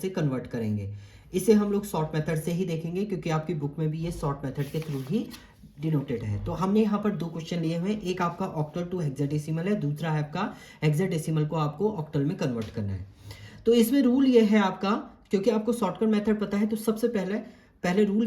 कन्वर्ट करेंगे। इसे हम लोग शॉर्ट मेथड से ही देखेंगे, क्योंकि आपकी बुक में भी ये शॉर्ट मेथड के थ्रू ही डिनोटेड है। तो हमने यहाँ पर दो क्वेश्चन लिए हुए हैं, एक आपका ऑक्टल टू हेक्साडेसिमल है, दूसरा है आपका हेक्साडेसिमल को आपको ऑक्टल में कन्वर्ट करना है। तो इसमें रूल ये है आपका, क्योंकि आपको शॉर्टकट मेथड पता है, तो सबसे पहले रूल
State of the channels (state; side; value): identical; both; correlation 1.00